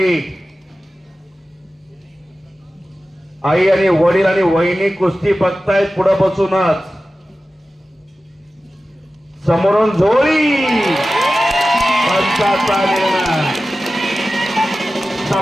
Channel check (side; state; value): both; normal; correlation 0.95